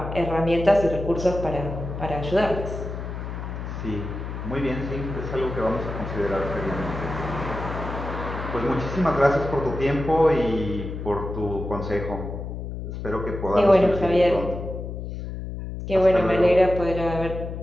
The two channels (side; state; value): left; noise; hum, 7 dB below the sound